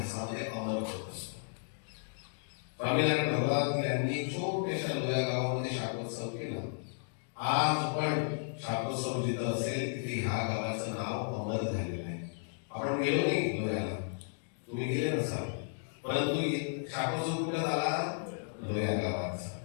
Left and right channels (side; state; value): right; silent; digital silence